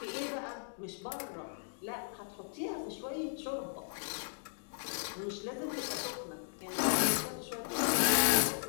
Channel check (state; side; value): silent; right; digital silence